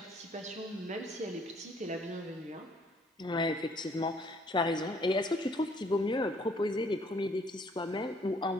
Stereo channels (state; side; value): normal; both; correlation 0.63